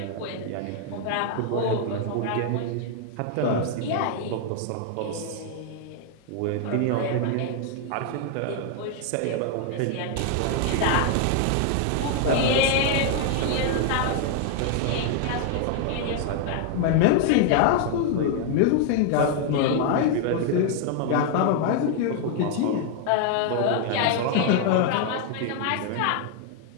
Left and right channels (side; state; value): both; different; correlation 0.00